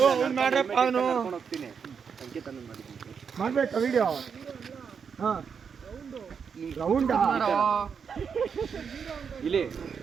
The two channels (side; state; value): left; quieter; 6.5 dB